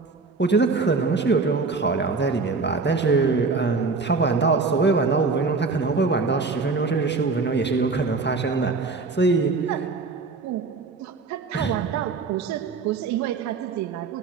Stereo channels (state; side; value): quieter; left; 4.3 dB